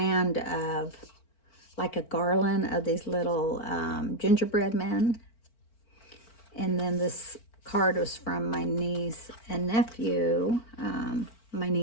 of, like a garland of these little gingerbread men. And then this card was from my niece and nephew, my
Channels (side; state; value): right; late; 4.4 ms